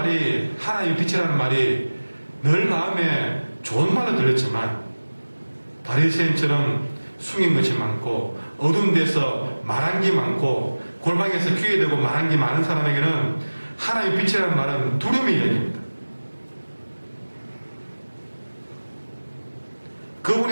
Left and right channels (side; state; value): both; inverted; correlation -1.00